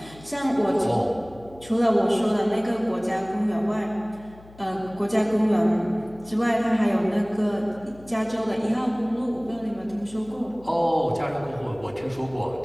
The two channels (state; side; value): noise; left; hum, 22 dB below the sound